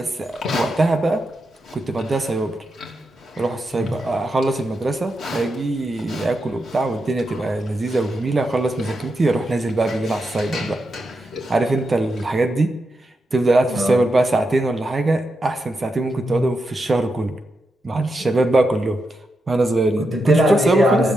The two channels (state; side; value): normal; both; correlation 0.86